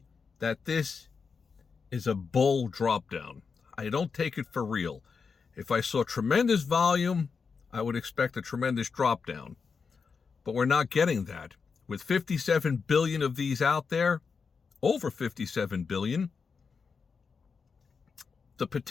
that this is a bull drop down. I don't take it for real. If I saw tremendous volume, I would expect a tremendous drop down. But we're not getting that. With 57 billion of these out there, over 57 billion, the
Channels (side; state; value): right; quieter; 5.4 dB